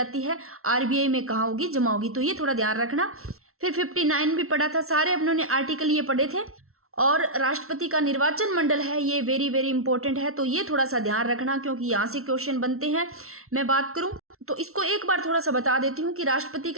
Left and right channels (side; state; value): left; late; 0.63 ms